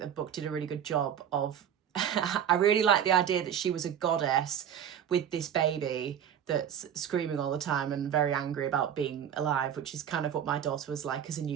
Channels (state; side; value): quieter; left; 9.1 dB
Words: book did a really good job of I really like the idea that she was a goddess with this baby that's screaming all the time and very angry about being alive, which is kind of what my daughter was like as a